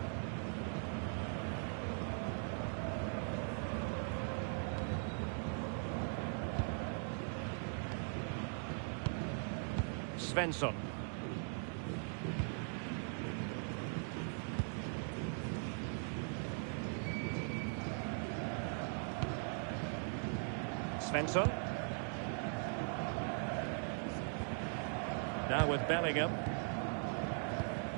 Svensson. Svensson. Now with Bellingham.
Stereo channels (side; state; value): left; silent; 51 dB below the other